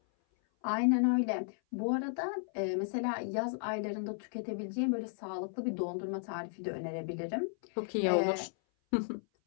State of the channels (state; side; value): silent; right; 55 dB below the other